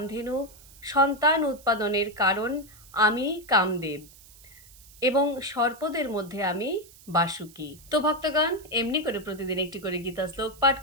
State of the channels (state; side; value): noise; right; hiss, 23 dB below the sound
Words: সন্তান উৎপাদনের কারণ আমি কামদেব, এবং সর্পদের মধ্যে আমি বাসুকি। তো ভক্তগণ, এমনি করে প্রতিদিন একটি করে গীতা শ্লোক পাঠ